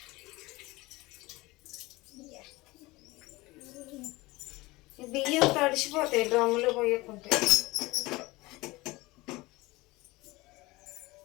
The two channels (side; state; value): right; quieter; 21.3 dB